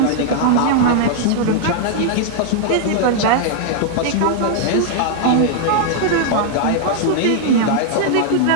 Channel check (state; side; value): different; both; correlation -0.01